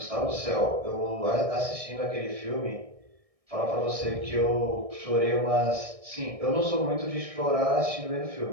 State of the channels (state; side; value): late; left; 1.6 ms